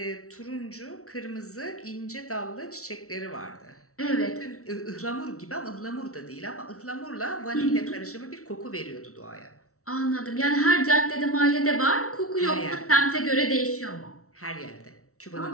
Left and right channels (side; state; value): right; late; 0.64 ms